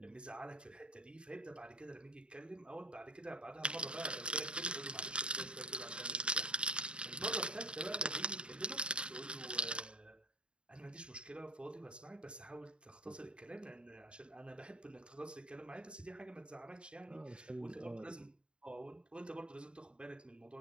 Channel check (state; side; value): late; left; 0.053 ms